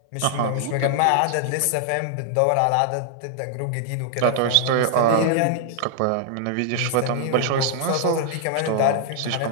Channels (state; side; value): different; both; correlation -0.01